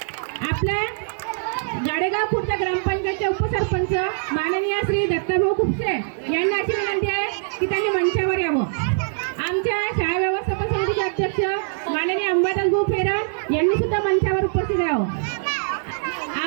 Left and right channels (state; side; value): silent; left; digital silence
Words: आपल्या गाडेगाव खुर्द ग्रामपंचायतचे उपसरपंच माननीय श्री दत्ताभाऊ खुपसे यांना अशी विनंती आहे की त्यांनी मंचावर यावं. आमच्या शाळा व्यवस्थापन समितीचे अध्यक्ष माननीय अंबादास भाऊ फेरण यांनी सुद्धा मंचावर उपस्थित राहावं.